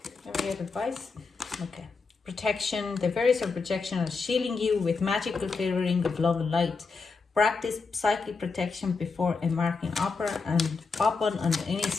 Can we get advice? Okay. Protection. The various of protection are shielding you with magical clearing of love and light. Practice psychic protection before embarking upon any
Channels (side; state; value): right; quieter; 4.5 dB